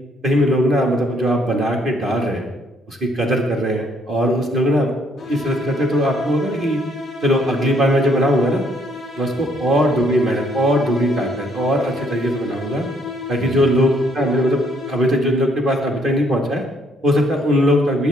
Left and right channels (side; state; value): both; normal; correlation 0.67